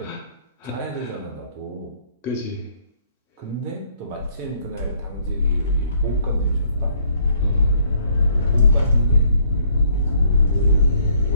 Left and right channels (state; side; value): inverted; both; correlation -0.65